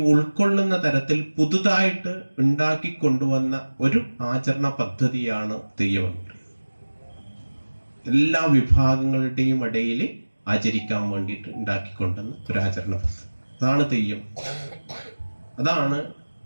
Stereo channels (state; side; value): inverted; both; correlation -1.00